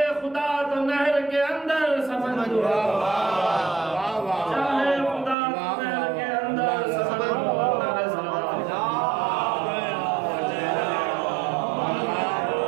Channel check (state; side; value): drops out; left; at 5.4 s